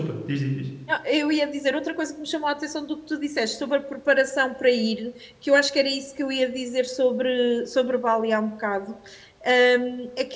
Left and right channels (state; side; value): identical; both; correlation 1.00